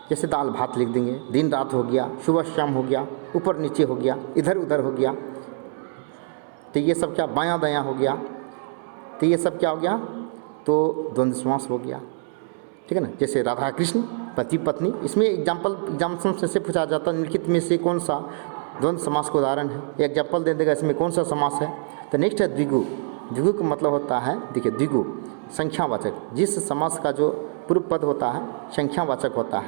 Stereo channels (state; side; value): silent; left; 62 dB below the other